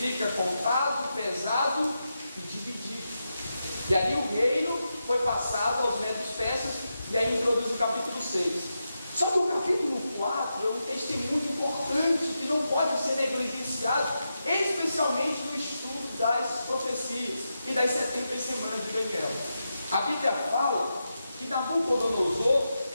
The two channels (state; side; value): inverted; both; correlation -0.88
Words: contado, pesado e dividido. E ali o reino foi passado aos medos persas, e aí introduz o capítulo 6. Só que o capítulo 4 é um texto muito importante que não pode ser negligenciado, especialmente no estudo das profecias e das 70 semanas de Daniel. A Bíblia fala que Nabucodonosor